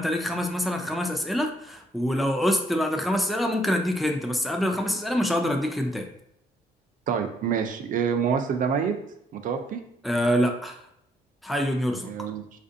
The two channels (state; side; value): normal; both; correlation 0.71